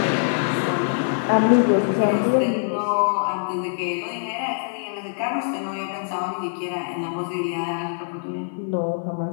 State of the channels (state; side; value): silent; right; 56 dB below the other